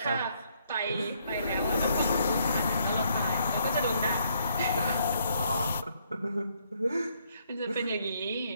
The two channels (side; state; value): both; inverted; correlation -0.71